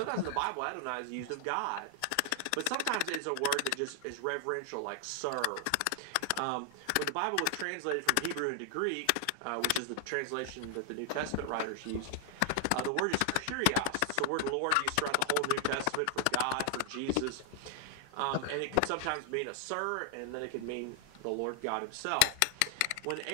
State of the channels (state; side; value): different; both; correlation 0.00